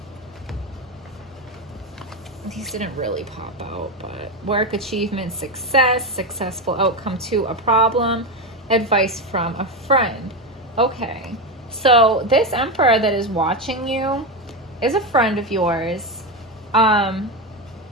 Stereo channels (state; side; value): normal; both; correlation 0.13